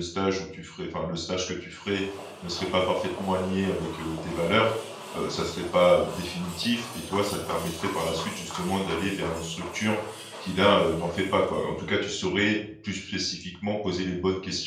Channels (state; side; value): identical; both; correlation 1.00